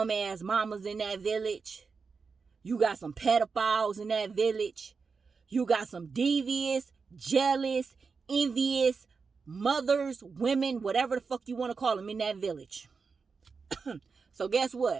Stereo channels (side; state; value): left; quieter; 5.0 dB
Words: mamas in that village. You got some pedophiles in that village. You got some devious, jealous, envious mothers, women, whatever the fuck you want to call them in that village. So guess